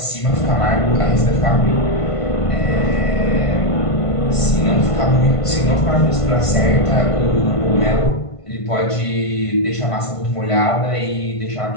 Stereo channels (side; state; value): right; late; 1.5 ms